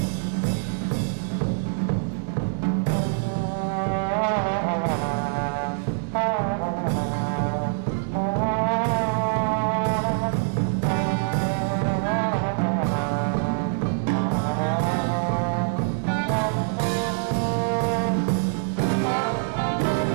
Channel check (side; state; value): left; silent; digital silence